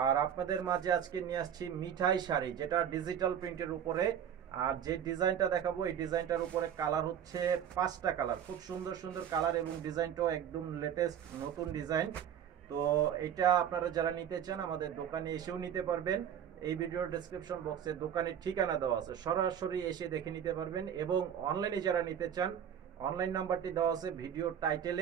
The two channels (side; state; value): left; quieter; 9.1 dB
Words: আর আপনাদের মাঝে আজকে নিয়ে আসছি মিঠাই শাড়ি, যেটা ডিজিটাল প্রিন্টের উপরে। আর যে ডিজাইনটা দেখাবো এই ডিজাইনটার উপরে কালার হচ্ছে 5টা কালার, খুব সুন্দর সুন্দর কালার এবং ডিজাইনটাও একদম লেটেস্ট নতুন ডিজাইন। তো এটা আপনারা যারা নিতে চান আমাদের দোকানে এসেও নিতে পারবেন। এই ভিডিওর ডেসক্রিপশন বক্সে দোকানের ঠিকানা দেওয়া আছে, সরাসরি এসে দেখে নিতে পারবেন। এবং অনলাইনে যারা নিতে চান অনলাইন নাম্বারটি দেওয়া আছে ভিডিওর